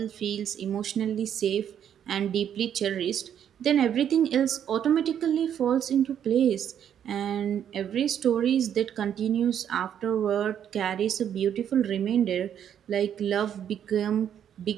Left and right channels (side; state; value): left; quieter; 9.3 dB